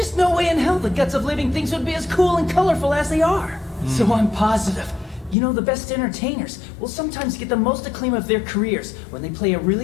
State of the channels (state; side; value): drops out; right; at 5.4 s